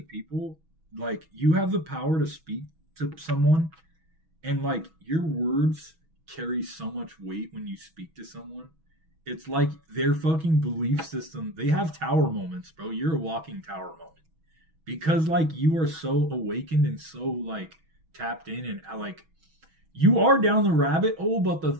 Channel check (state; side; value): late; left; 6.2 ms